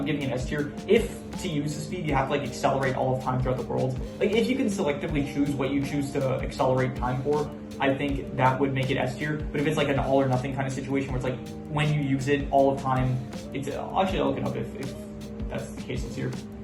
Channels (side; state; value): both; identical; correlation 1.00